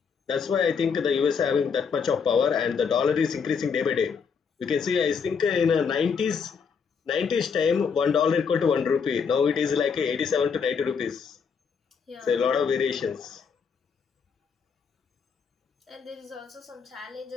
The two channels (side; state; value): right; quieter; 6.1 dB